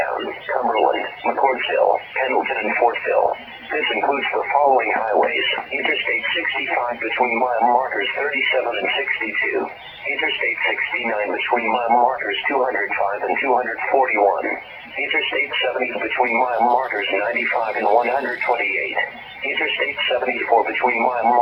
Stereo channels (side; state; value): both; identical; correlation 1.00